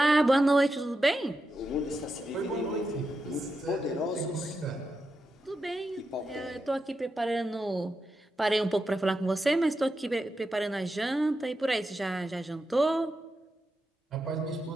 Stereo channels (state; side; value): normal; both; correlation 0.87